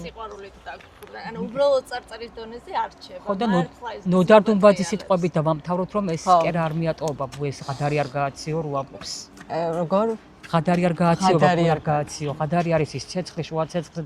სიყვარული დაგხვდა. ანუ უბრალოდ წარწერის დონეზე არ რჩება. ხო და ნოდარ დუმბაძის სიტყვებით დავამთავროთ, რომ ეს კერა არ მიატოვება, ეს ღადარი არ გააციო რო ამბობს. როგორ? ღადარი არ გააციო, ბაკუ არ გააციო. ღადარი არის ის ცეცხლი, შუა ცეცხლზე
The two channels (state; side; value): identical; both; correlation 1.00